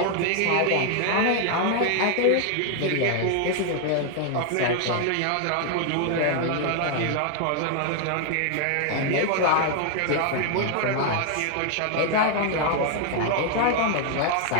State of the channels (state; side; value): different; both; correlation 0.00